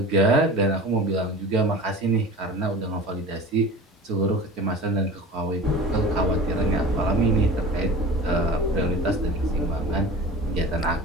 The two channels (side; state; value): both; normal; correlation 0.37